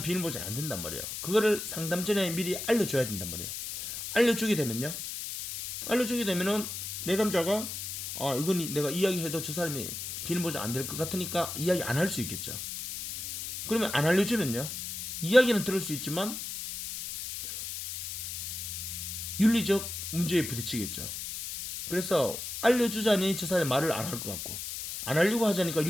비밀 보장이 안 된단 말이에요. 그거를 상담 전에 미리 알려줘야 된단 말이에요. 알려주게 되면요 알려주게 되면은 내담자가 이건 내가 이야기해도 저 사람이 비밀 보장 안 될 것 같으니까 이야기 안 할 수 있겠죠. 그러면 안 알려주면요, 이야기는 들을 수 있지만 윤리적 문제에 부딪히겠죠. 그래서 알려주자니 저 사람이 말을 안 할 것 같고, 안 하려고 하자니까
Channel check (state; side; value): noise; left; hiss, 6 dB below the sound